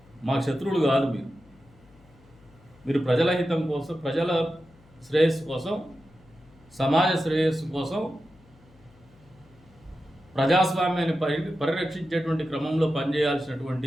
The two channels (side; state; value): left; noise; hum, 27 dB below the sound